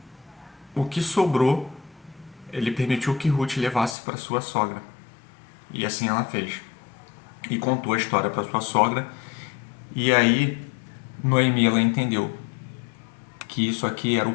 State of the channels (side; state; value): right; drops out; at 4.0 s